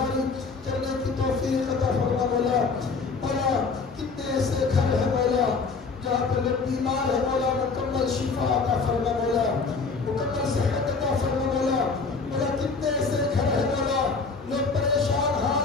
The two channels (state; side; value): quieter; right; 4.5 dB